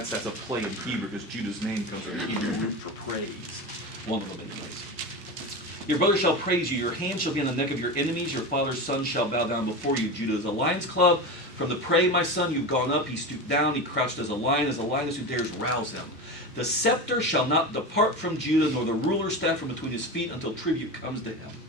a play in Hebrew, because Judah's name comes from the Hebrew root for praise. One of them, anyways. Your brother shall praise you. Your hand shall be on the neck of your enemies. Your father's son shall bow down before you. Judah is a lion's club. From the prey, my son, you've gone up. He stooped down. He crouched as a lioness who dares rouse him. The scepter shall not depart from Judah, nor the ruler's staff from between his feet, until tribute comes to him.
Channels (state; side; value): normal; both; correlation 0.24